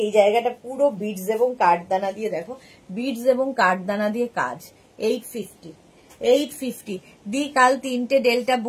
এই জায়গাটা পুরো বিডস এবং কাঠদানা দিয়ে, দেখো বিডস এবং কাঠদানা দিয়ে কাজ। 850, 850 দি। কাল 3টে ডেল্টা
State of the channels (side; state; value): both; identical; correlation 1.00